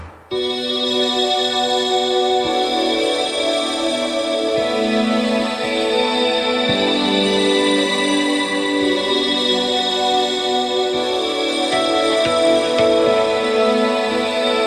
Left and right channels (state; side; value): identical; both; correlation 1.00